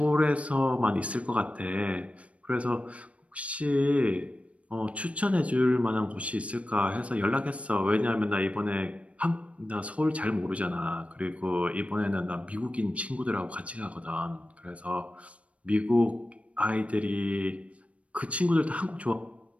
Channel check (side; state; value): left; late; 0.064 ms